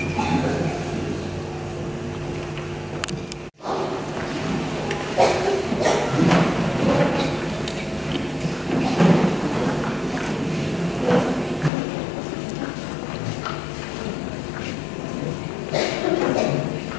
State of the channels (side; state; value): right; drops out; at 11.7 s